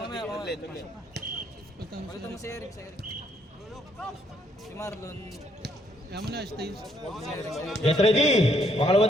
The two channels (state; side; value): normal; both; correlation 0.70